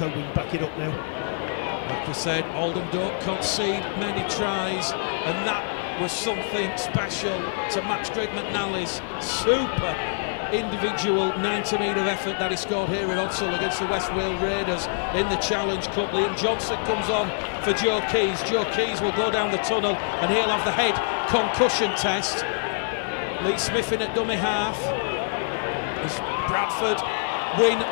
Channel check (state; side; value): silent; right; digital silence